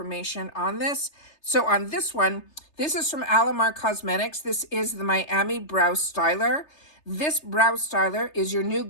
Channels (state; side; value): late; right; 3.3 ms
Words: on this. So on this one, this is from Alamar Cosmetics. This is the Miami Brow Styler. This brow styler is your new